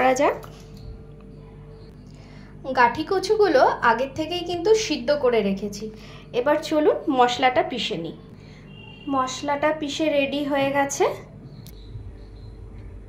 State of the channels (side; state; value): both; identical; correlation 1.00